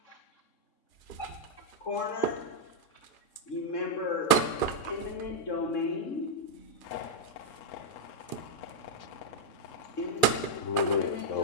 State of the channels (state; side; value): late; right; 3.6 ms